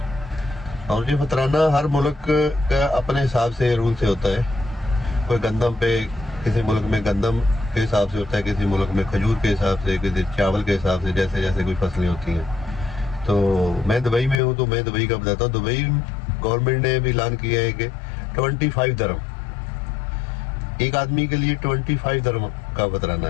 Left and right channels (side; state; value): right; drops out; at 14.4 s